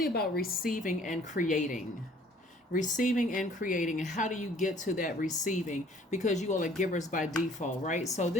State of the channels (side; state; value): both; normal; correlation 0.56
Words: about receiving and creating. Receiving and creating. And how do you get to that receiving? Because you all are givers by default, right? So